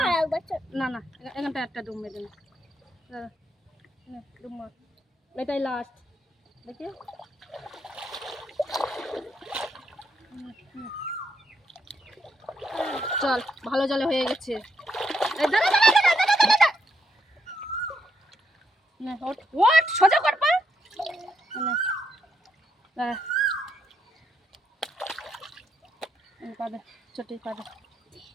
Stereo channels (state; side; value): normal; both; correlation 0.79